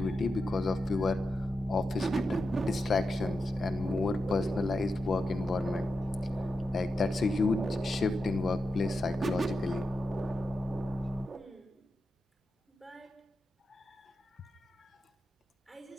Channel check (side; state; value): both; normal; correlation 0.89